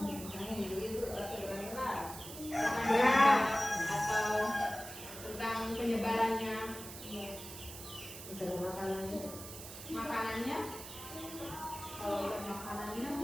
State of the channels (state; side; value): noise; right; hiss, 12 dB below the sound